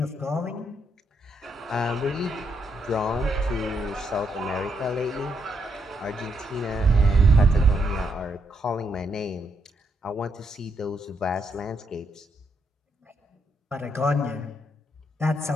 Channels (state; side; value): normal; both; correlation 0.77